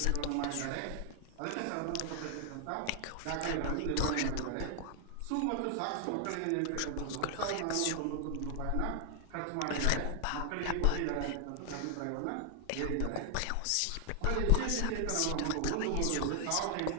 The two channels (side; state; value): both; different; correlation 0.00